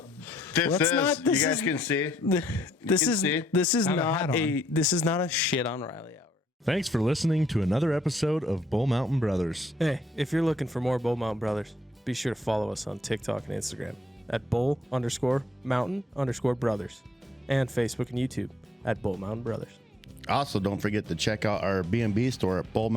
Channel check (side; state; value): both; normal; correlation 0.69